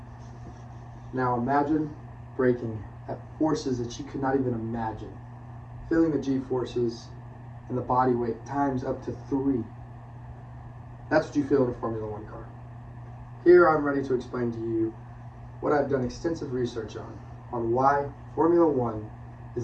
Now imagine braking at forces that you could not even imagine. Feeling the G-forces and the body weight times up to 3. That's what you feel in a Formula One car. Here I'm ready to explain to you what I've done extensive research on why Formula One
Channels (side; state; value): both; identical; correlation 1.00